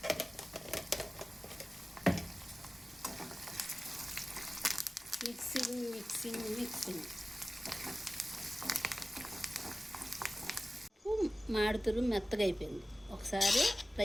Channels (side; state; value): both; normal; correlation 0.96